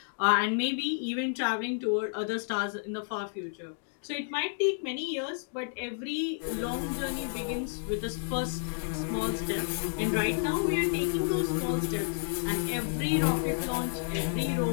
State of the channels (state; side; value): silent; right; digital silence